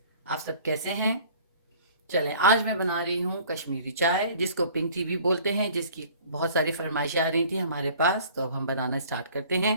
आप सब कैसे हैं? चलें, आज मैं बना रही हूँ कश्मीरी चाय, जिसको पिंक टी भी बोलते हैं, जिसकी बहुत सारी फरमाइशें आ रही थी हमारे पास, तो अब हम बनाना स्टार्ट करते हैं।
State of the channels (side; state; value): both; inverted; correlation -0.51